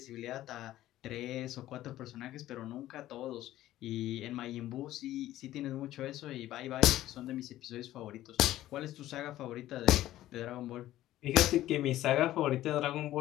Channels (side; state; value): right; quieter; 14.4 dB